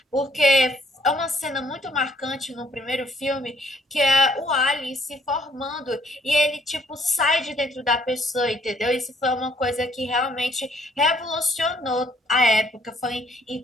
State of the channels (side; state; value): both; normal; correlation 0.65